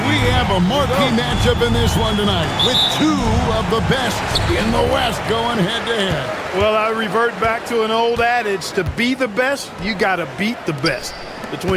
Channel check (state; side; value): identical; both; correlation 1.00